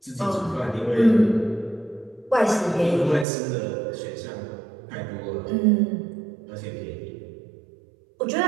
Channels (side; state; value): left; drops out; at 3.2 s